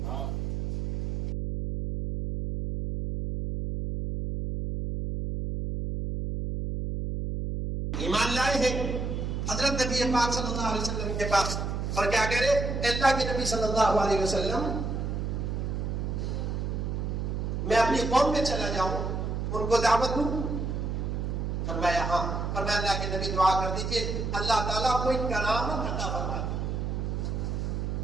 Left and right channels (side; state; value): right; noise; hum, 2 dB below the sound